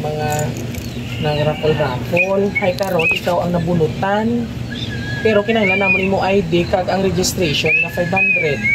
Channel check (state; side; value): identical; both; correlation 1.00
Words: nang raffle. Hay karon ikaw ang nabunutan. Pero kinahanglan namon imo ID kag ang registration na 500.